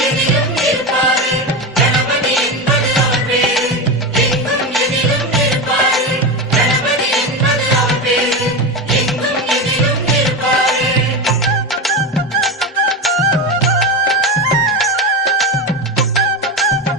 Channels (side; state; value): both; normal; correlation 0.19